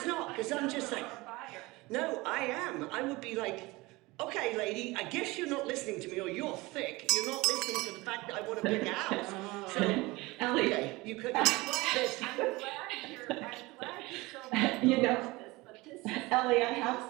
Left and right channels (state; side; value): quieter; left; 22.1 dB